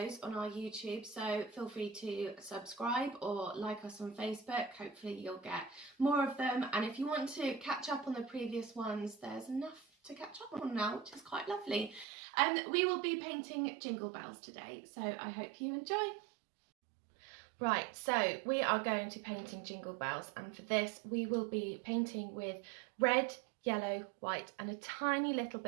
on our YouTube, so feel free to subscribe or like us on Facebook. Hopefully you'll get more of them, and if you want to catch up on the previous ones, there's enough to catch up on now, which is quite lovely. We will be painting jingle bells today, so I hope you enjoy. Right, so we are going to painting jingle bells, and for this we will be painting with red, yellow, white and a tiny little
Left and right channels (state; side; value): drops out; left; at 12.1 s